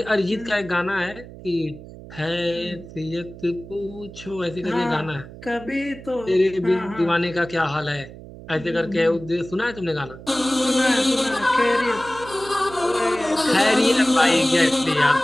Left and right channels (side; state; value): right; noise; hum, 16 dB below the sound